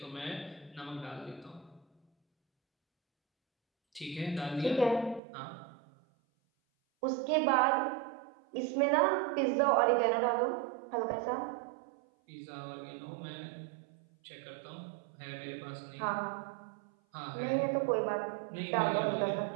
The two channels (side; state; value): left; drops out; at 5.2 s